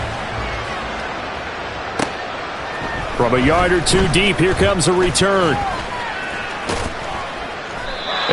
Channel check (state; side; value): identical; both; correlation 1.00